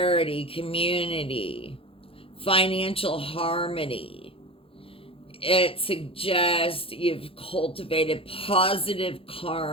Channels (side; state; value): right; late; 0.27 ms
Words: community, financial harmony. It suggests you've cultivated positive